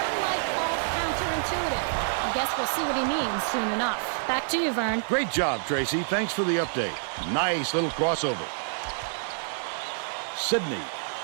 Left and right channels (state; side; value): silent; left; 60 dB below the other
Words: might call counterintuitive. I guess we'll see what he means soon enough. Back to you, Vern. Great job, Tracy. Thanks for the update. Nice little crossover. Sydney